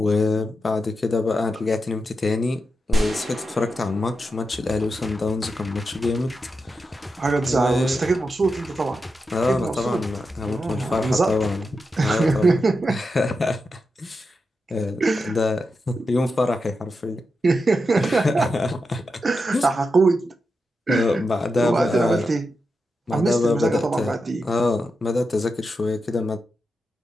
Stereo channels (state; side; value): normal; both; correlation 0.88